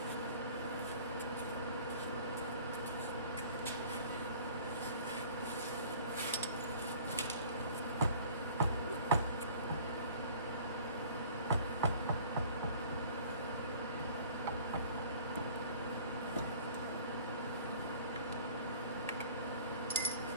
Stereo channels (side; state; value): both; inverted; correlation -0.49